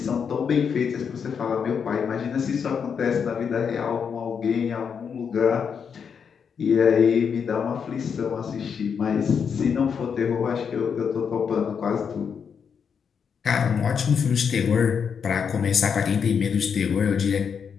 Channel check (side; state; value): right; quieter; 6.7 dB